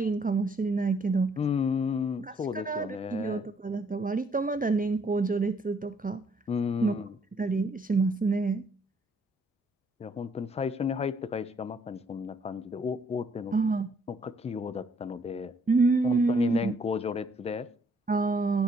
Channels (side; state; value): both; normal; correlation 0.67